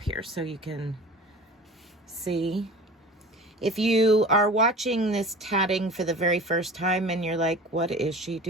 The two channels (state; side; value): normal; both; correlation 0.39